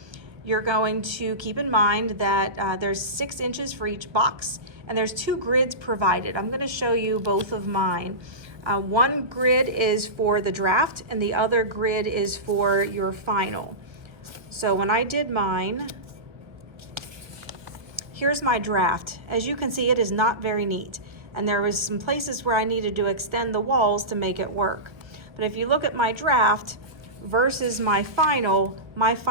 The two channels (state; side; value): late; left; 1.4 ms